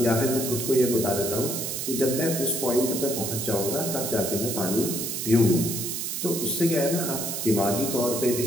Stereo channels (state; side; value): noise; right; hiss, 3 dB below the sound